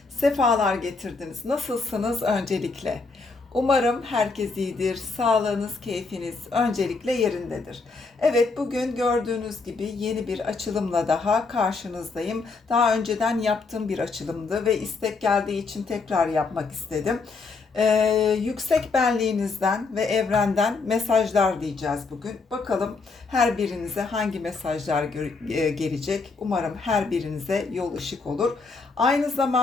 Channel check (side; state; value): right; quieter; 4.2 dB